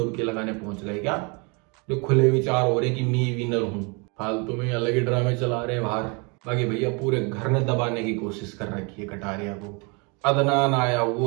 लगाने पहुंच गए क्या? जो खुले विचार हो रहे कि मैं विनर हूं, फालतू में अलग ही ड्रामे चला रहे हैं बाहर। बाकी भैया पूरे घर ने दबाने की कोशिश कर रखी है कटारिया को। अदनान आया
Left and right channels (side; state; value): left; quieter; 31.4 dB